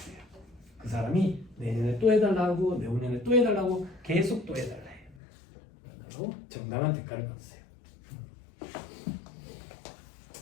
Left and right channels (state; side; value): drops out; right; at 5.2 s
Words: 그 사람이 내년에 또 해달라고 내후년에 또 해달라고 계속 또 해달라 해요. 그리고 정당한 대가를 받으세요.